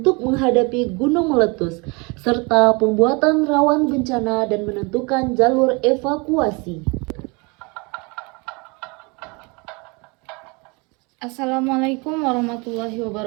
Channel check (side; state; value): left; quieter; 29.1 dB